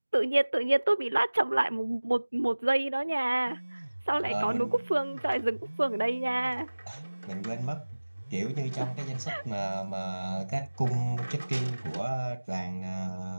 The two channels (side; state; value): both; inverted; correlation -1.00